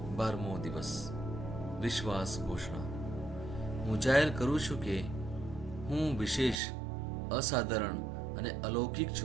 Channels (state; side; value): drops out; left; at 6.6 s